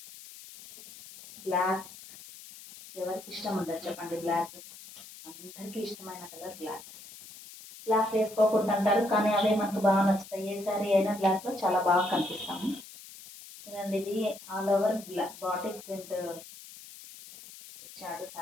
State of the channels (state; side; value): noise; left; hiss, 17 dB below the sound